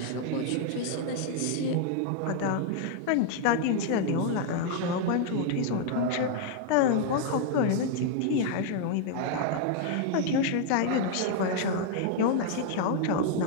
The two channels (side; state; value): both; different; correlation 0.00